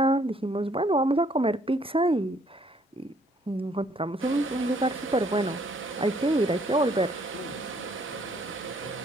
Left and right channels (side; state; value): both; normal; correlation 0.65